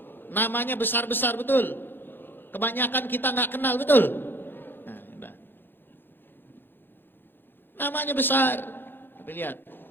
Namanya besar-besar, betul? Kebanyakan kita nggak kenal, betul? Nah, namanya besar, tapi lihat,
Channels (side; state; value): right; late; 0.099 ms